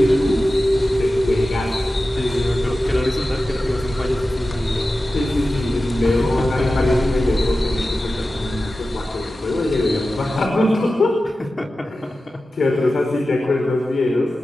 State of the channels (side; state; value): both; normal; correlation 0.94